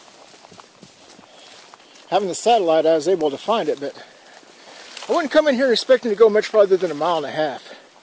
having the satellite, I was able to find it, but I wouldn't come in here expecting to go much farther than 1.5 miles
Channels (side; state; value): both; identical; correlation 1.00